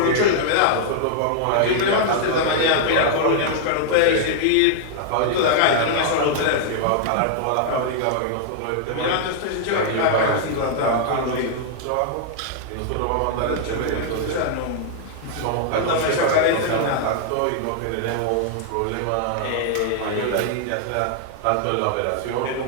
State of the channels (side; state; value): both; different; correlation -0.01